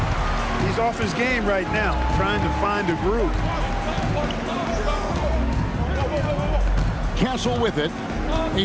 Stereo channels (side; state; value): both; identical; correlation 1.00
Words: He's off his game right now, trying to find a groove. Castle with it.